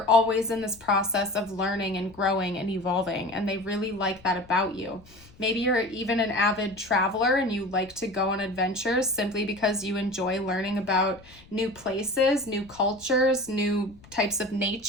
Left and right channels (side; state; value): left; noise; rumble, 24 dB below the sound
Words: always in this process of learning and growing and evolving, and they really like that about you. Maybe you're even an avid traveler and you like to go on adventures simply because you enjoy learning about new places, new cultures, new types of